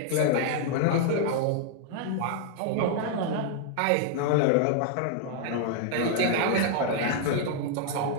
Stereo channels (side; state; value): both; different; correlation 0.00